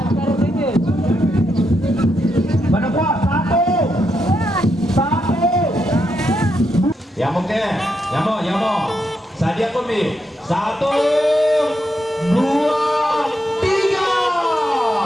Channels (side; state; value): both; normal; correlation 0.82